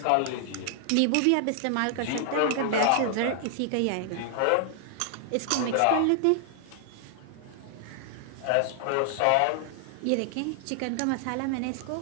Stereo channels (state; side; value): different; both; correlation 0.00